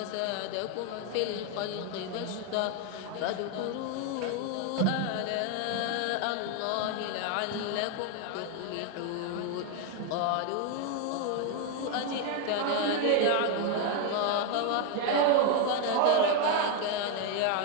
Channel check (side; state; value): both; different; correlation 0.01